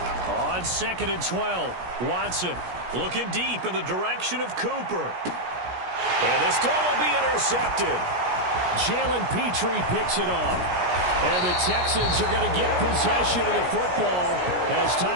On 2nd and 12, Watson looking deep in the direction of Cooper. And this throw will be intercepted. Jalen Petrie picks it off. And the Texans are going to get possession of the football as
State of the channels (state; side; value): late; left; 17 ms